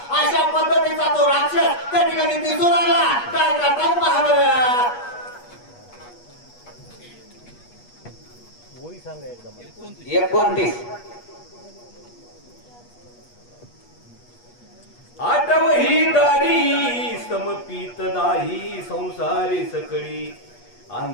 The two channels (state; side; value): late; right; 8.3 ms